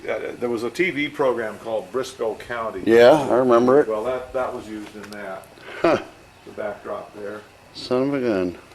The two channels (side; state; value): both; identical; correlation 1.00